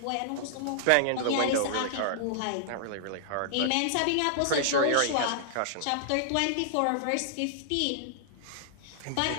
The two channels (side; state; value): both; different; correlation -0.01